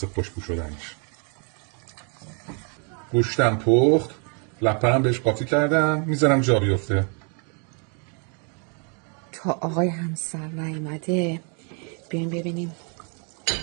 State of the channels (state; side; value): quieter; left; 38.6 dB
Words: خوشبو شدنش. گوشتم پخت، لپنم بهش قاطی کردم، میذارم جا بیفته. تا آقای همسر نیومده بیایم ببینیم